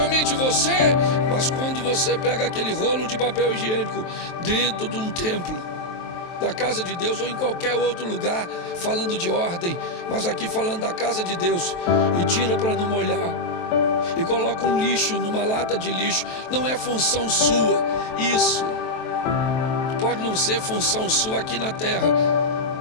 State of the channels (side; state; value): right; late; 23 ms